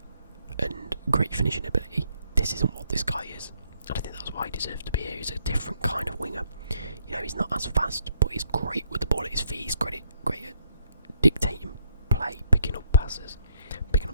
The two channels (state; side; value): inverted; both; correlation -0.70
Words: and great finishing ability. This isn't what this guy is. And I think that's why he deserves to be here. He's a different kind of winger. You know, he's not as fast, but he's great with the ball at his feet. He's great at dictating play, picking up passes, picking up